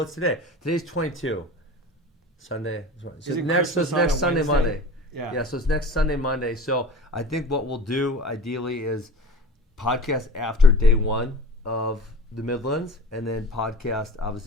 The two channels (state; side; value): normal; both; correlation 0.38